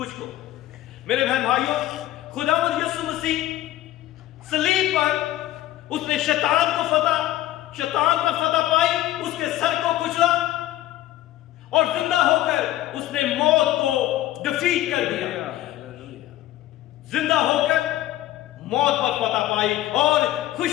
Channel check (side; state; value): right; quieter; 14.6 dB